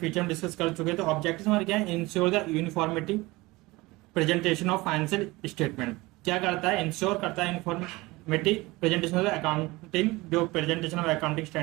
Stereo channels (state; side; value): quieter; left; 21.5 dB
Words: हम डिस्कस कर चुके हैं। तो ऑब्जेक्टिव्स हमारे क्या है, ensure the uniformity presentation of financial statement. क्या करता है, इंश्योर करता है यूनिफॉर्मिटी प्रेजेंटेशन ऑफ अकाउंटिंग, जो प्रेजेंटेशन ऑफ अकाउंटिंग